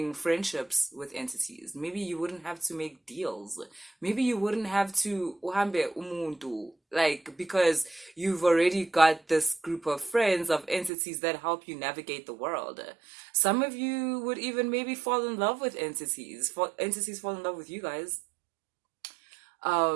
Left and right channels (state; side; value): drops out; left; at 10.9 s